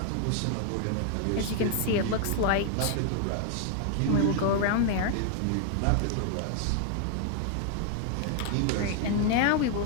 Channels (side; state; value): both; different; correlation 0.00